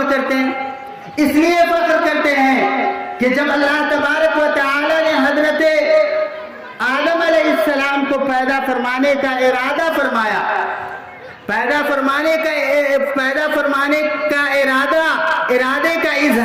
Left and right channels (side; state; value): both; identical; correlation 1.00